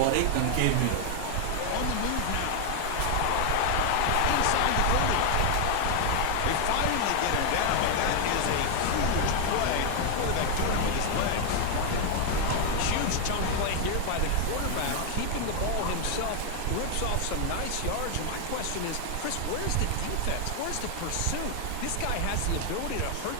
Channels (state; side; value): different; both; correlation 0.00